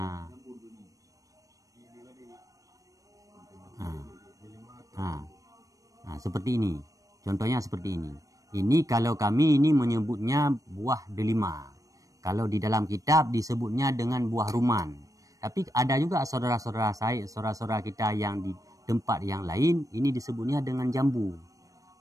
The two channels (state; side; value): late; left; 0.16 ms